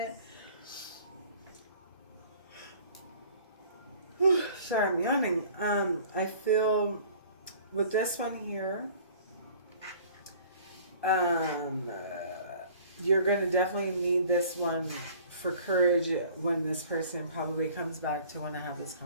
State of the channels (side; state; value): both; inverted; correlation -0.50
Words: Sorry, I'm yawning. I feel with this one here, you're going to definitely need this one for courage when this person probably comes back to want to have this